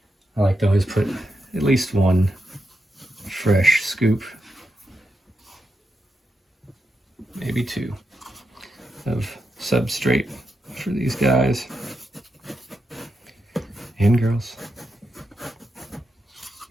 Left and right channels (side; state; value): both; normal; correlation 0.85